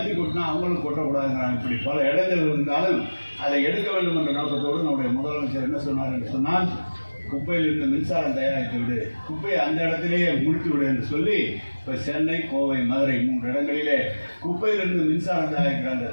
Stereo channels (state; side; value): inverted; both; correlation -1.00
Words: கொட்டினா அவங்களும் கொட்டக்கூடாதுங்கிறாங்க. இப்படி பல இடங்கள் இருந்தாலும் அதை எடுக்க வேண்டும் என்ற நோக்கத்தோடு நம்முடைய முதலமைச்சர் என்ன சொன்னார் என்று சொன்னால், குப்பையிலிருந்து மின்சாரம் தயாரித்து விடு, குப்பையை அந்த இடத்திலேயே முடித்து விடு என்று சொல்லி இப்போ சென்னை, கோவை, மதுரை 3 இடங்களிலே குப்பையிலிருந்து மின்சாரம் தயாரிக்கிற அந்த